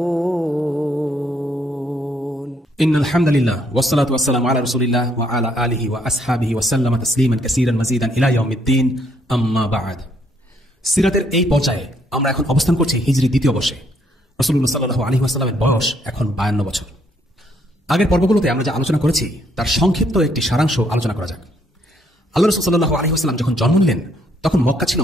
إن الحمد لله والصلاة والسلام على رسول الله وعلى آله وأصحابه وسلم تسليما كثيرا مزيدا إلى يوم الدين أما بعد. সিরাতের এই পর্যায়ে আমরা এখন অবস্থান করছি হিজরি দ্বিতীয় বর্ষে। রাসূলুল্লাহ সাল্লাল্লাহু আলাইহি ওয়াসাল্লামের বয়স এখন 52 বছর। আগের পর্বগুলোতে আমরা যা আলোচনা করেছি তার সংক্ষিপ্ত একটি সারাংশ আলোচনা করা যাক। আল্লাহ রাসূল সাল্লাল্লাহু আলাইহি ওয়াসাল্লাম যখন জন্ম নিলেন তখন মক্কা ছিল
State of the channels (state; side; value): normal; both; correlation 0.70